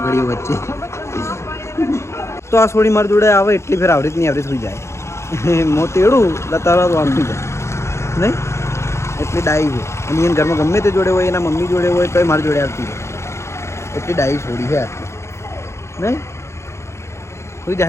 વચ્ચે. તો આ છોડી મારી જોડે આવે એટલી ફેર આવડી નહીં આવડી થઈ જાય. મો તેડું તરત વાંચી જાય નહીં, એટલી ડાઈ છે. અને એને ઘરમાં ગમે તે જોડે હોય, એના મમ્મી જોડે હોય તો મારી જોડે આવતી હોય. એટલી ડાઈ છોડી છે આટલી નહીં. સુઈ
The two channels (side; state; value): right; late; 0.13 ms